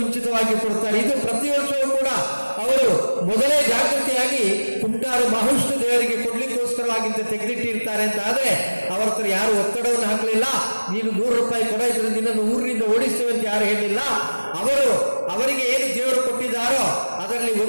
ಕೊಡ್ತಾರೆ. ಇದು ಪ್ರತಿ ವರ್ಷವೂ ಕೂಡ ಅವರು ಮೊದಲೇ ಜಾಗೃತಿಯಾಗಿ ಕುಂಟಾರು ಮಹಾವಿಷ್ಣು ದೇವರಿಗೆ ಕೊಡ್ಲಿಕ್ಕೋಸ್ಕರವಾಗಿಂತ ತೆಗೆದಿಟ್ಟಿರ್ತಾರೆ ಅಂತ ಆದರೆ ಅವರ ಹತ್ರ ಯಾರು ಒತ್ತಡವನ್ನು ಹಾಕಲಿಲ್ಲ. ನೀನು 100 ರೂಪಾಯಿ ಕೊಡ, ಇದ್ರೆ ನಿನ್ನನ್ನು ಊರಿನಿಂದ ಓಡಿಸ್ತೇವೆ ಅಂತ ಯಾರು ಹೇಳಿಲ್ಲ. ಅವರಿಗೆ ಏನು ದೇವರು ಕೊಟ್ಟಿದ್ದಾರೋ ಅದರಲ್ಲಿ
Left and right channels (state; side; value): inverted; both; correlation -1.00